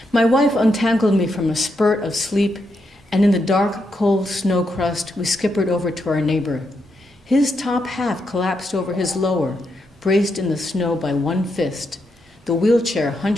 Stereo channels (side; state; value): both; normal; correlation 0.82